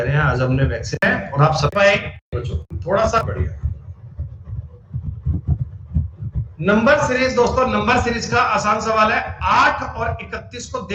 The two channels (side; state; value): both; identical; correlation 1.00